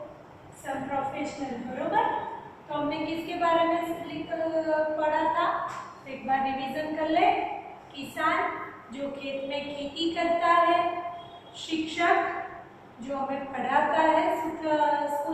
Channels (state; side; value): identical; both; correlation 1.00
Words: प्रोफेशनल, बरोबर? तो हमने किसके बारे में पढ़ा था? एक बार रिवीजन कर ले। किसान जो खेत में खेती करता है, शिक्षक जो हमें पढ़ाता है